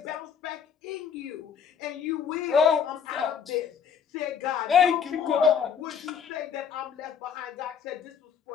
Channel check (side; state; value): right; quieter; 7.1 dB